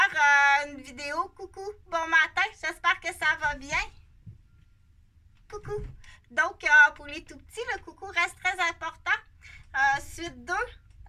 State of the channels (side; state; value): both; identical; correlation 1.00